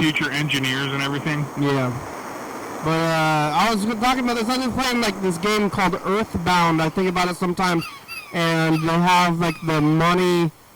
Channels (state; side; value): identical; both; correlation 1.00